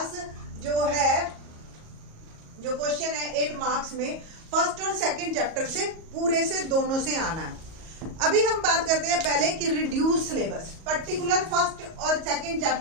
जो है, जो क्वेश्चन है 8 मार्क्स में फर्स्ट और सेकंड चैप्टर से पूरे से दोनों से आना है। अभी हम बात करते हैं पहले कि रिड्यूस सिलेबस, पर्टिकुलर फर्स्ट और सेकंड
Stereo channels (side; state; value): left; late; 37 ms